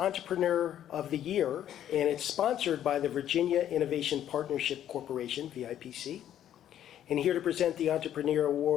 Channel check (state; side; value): quieter; right; 10.9 dB